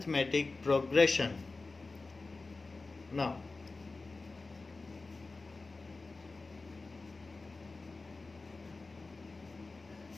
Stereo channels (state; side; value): quieter; right; 3.6 dB